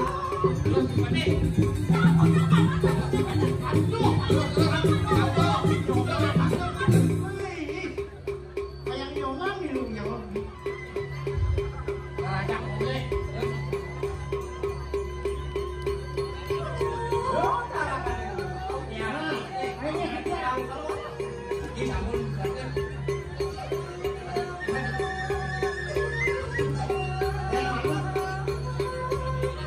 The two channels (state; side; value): identical; both; correlation 1.00